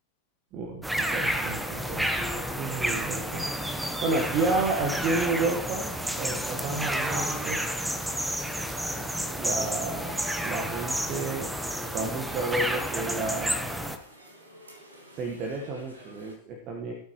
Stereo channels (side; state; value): both; normal; correlation 0.55